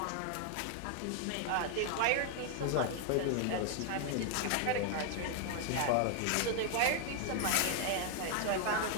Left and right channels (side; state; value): both; different; correlation 0.00